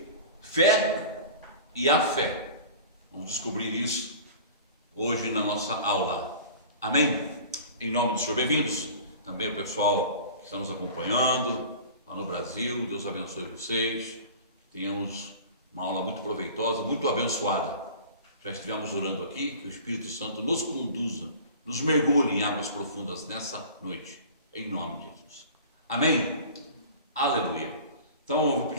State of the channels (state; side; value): inverted; both; correlation -0.40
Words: fé e a fé. Vamos descobrir isso hoje na nossa aula. Amém? Em nome do Senhor, bem-vindos. Também o pessoal que está nos acompanhando lá no Brasil. Deus abençoe vocês. Tenhamos uma aula muito proveitosa, muito abençoada. Já estivemos orando aqui, que o Espírito Santo nos conduza, nos mergulhe em águas profundas nessa noite. Em nome de Jesus. Amém? Aleluia. Então eu vou